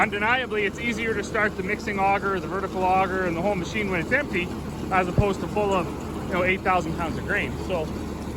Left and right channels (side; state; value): both; identical; correlation 1.00